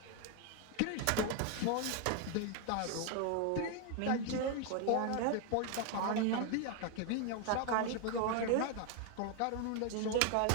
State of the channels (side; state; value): both; different; correlation 0.01